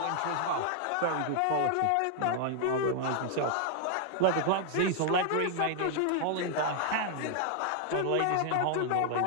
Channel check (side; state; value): both; different; correlation 0.00